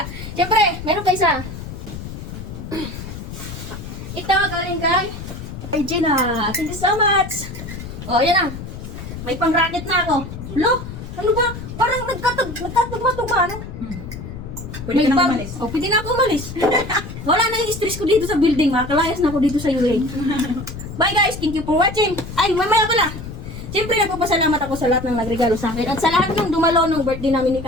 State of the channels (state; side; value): noise; left; rumble, 10 dB below the sound